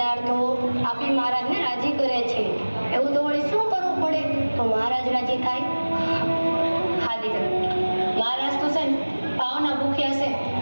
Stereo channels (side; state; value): both; inverted; correlation -1.00